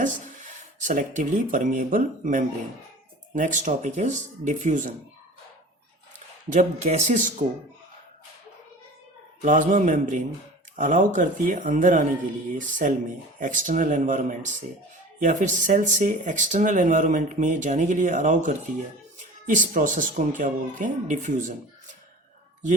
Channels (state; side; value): normal; both; correlation 0.40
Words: selectively permeable membrane. Next topic is diffusion. जब gases को plasma membrane allow करती है अंदर आने के लिए cell में external environment से, या फिर सेल से एक्सटर्नल एनवायरनमेंट में जाने के लिए अलाउ करती है, इस प्रोसेस को हम क्या बोलते हैं? डिफ्यूजन। ये